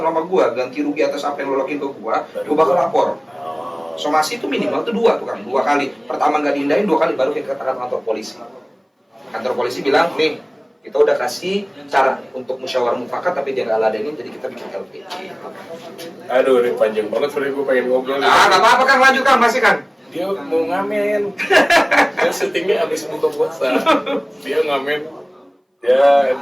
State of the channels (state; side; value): identical; both; correlation 1.00